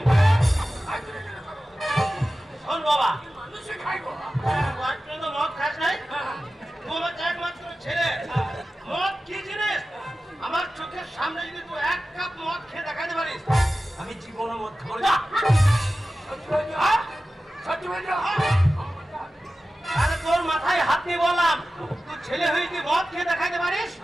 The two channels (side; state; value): both; normal; correlation 0.95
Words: শোন বাবা, মানুষে খাই বাবা। আজ পর্যন্ত মদ খাস নাই, হ্যাঁ, তুই আমার একমাত্র ছেলে। মদ কি জিনিস আমার চোখের সামনে যদি তুই এক কাপ মদ খেয়ে দেখাতে পারিস, আমি জীবনে মদ খাবো না। সত্যি বলছো? সত্যি বলছো? আরে তোর মাথায় হাত দিয়ে বললাম, তুই ছেলে হয়ে যদি মদ খেয়ে দেখাতে পারিস,